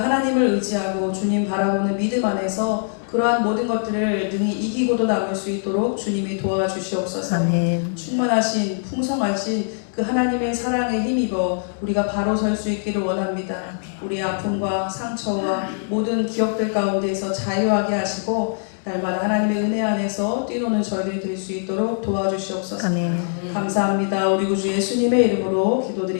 하나님을 의지하고 주님 바라보는 믿음 안에서 그러한 모든 것들을 능히 이기고도 남을 수 있도록 주님이 도와주시옵소서. 아멘. 충만하신 풍성하신 그 하나님의 사랑에 힘입어 우리가 바로 설 수 있기를 원합니다. 우리 아픔과 상처와 모든 기억들 가운데에서 자유하게 하시고 날마다 하나님의 은혜 안에서 뛰노는 저희들이 될 수 있도록 도와주시옵소서. 아멘. 감사합니다. 우리 구주 예수님의 이름으로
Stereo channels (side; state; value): right; silent; digital silence